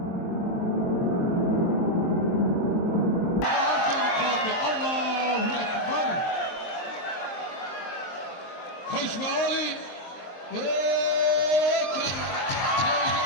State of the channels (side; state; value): right; late; 23 ms